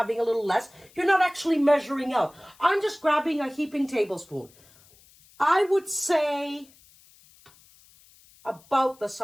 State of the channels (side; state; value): left; noise; hiss, 28 dB below the sound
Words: a little less. You're not actually measuring out. I'm just grabbing a heaping tablespoon. I would say about the